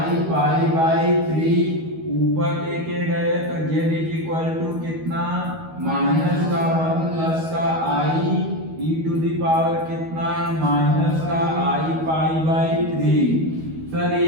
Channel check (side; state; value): left; late; 12 ms